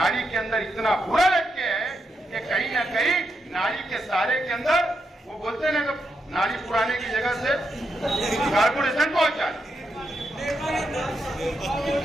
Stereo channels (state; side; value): normal; both; correlation 0.83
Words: के अंदर इतना बुरा लटके है कि कहीं ना कहीं नाड़ी के सहारे के अंदर वो बोलते हैं ना, नाड़ी पुराने की जगह से कारपोरेशन पहुंचा।